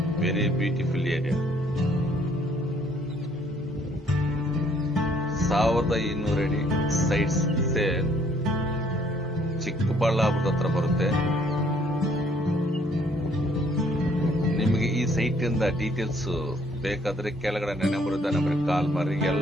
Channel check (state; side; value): normal; both; correlation 0.63